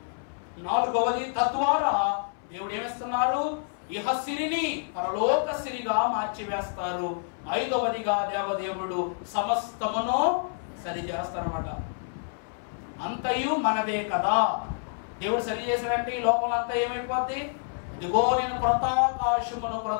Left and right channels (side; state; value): right; silent; 59 dB below the other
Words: 4వది, తద్వారా దేవుడు ఏమిస్తున్నారు? ఇహ సిరిని పరలోక సిరిగా మార్చివేస్తారు. 5వదిగా దేవదేవుడు సమస్తమును సరి చేస్తారన్నమాట. అంతయు మనదే కదా. దేవుడు సరి చేశాడంటే ఈ లోకంలో అంతా ఏమైపోద్ది? అదిగో నేను క్రొత్త ఆకాశమును